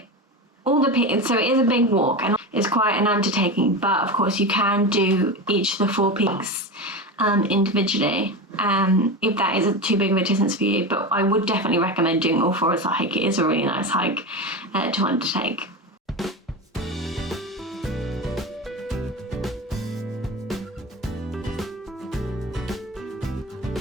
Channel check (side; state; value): both; normal; correlation 0.23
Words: is a big walk, and it's quite an undertaking. But of course, you can do each of the 4 peaks individually, if that is too big of a distance for you. But I would definitely recommend doing all 4 as a hike. It is a really nice hike to undertake.